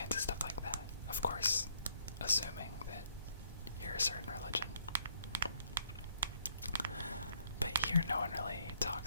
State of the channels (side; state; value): both; inverted; correlation -0.68